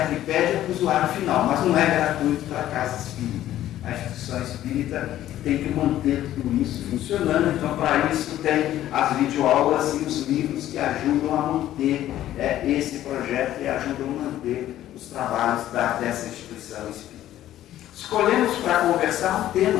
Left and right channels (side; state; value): right; quieter; 13.0 dB